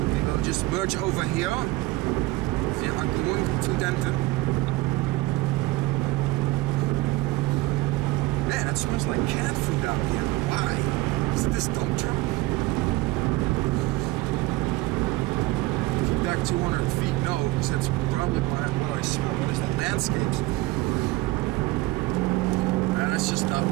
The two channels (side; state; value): left; quieter; 19.6 dB